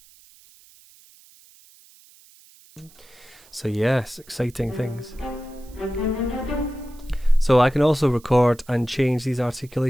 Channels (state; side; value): noise; right; hiss, 26 dB below the sound